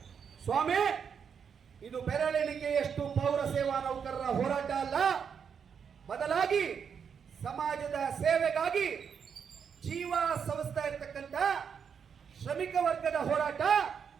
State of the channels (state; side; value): quieter; left; 7.0 dB